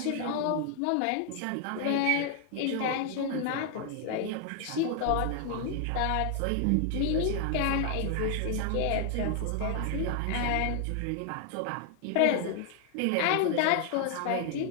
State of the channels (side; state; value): both; different; correlation 0.00